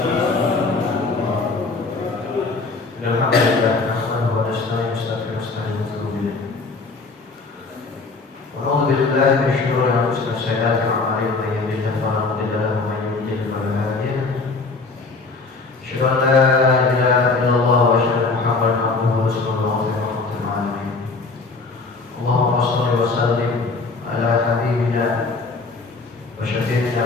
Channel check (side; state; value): right; quieter; 3.9 dB